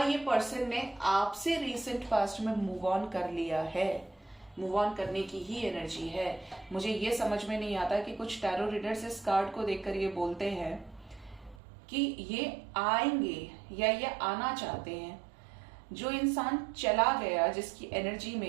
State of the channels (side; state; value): left; drops out; at 11.6 s